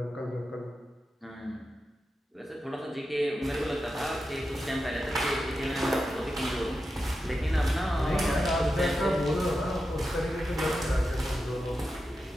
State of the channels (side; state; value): both; normal; correlation 0.90